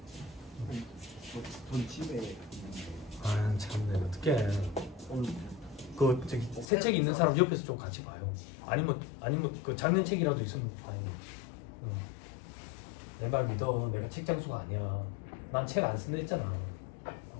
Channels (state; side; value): drops out; right; at 6.7 s